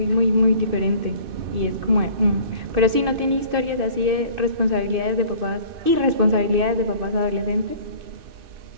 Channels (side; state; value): left; late; 2.6 ms